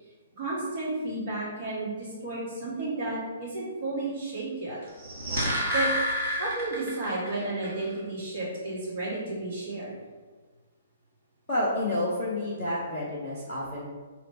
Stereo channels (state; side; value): inverted; both; correlation -0.49